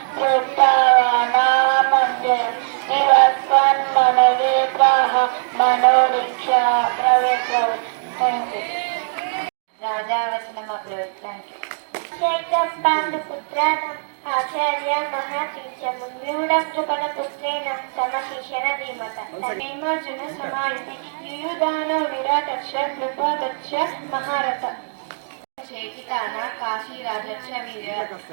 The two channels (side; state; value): left; silent; digital silence